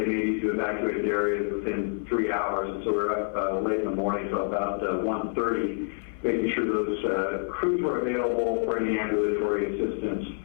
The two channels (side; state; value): right; silent; 59 dB below the other